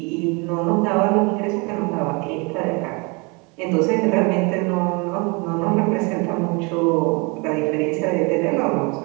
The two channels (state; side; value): quieter; left; 30.1 dB